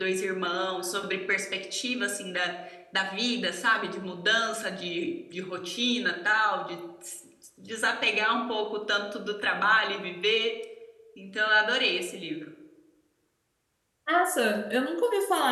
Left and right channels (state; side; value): identical; both; correlation 1.00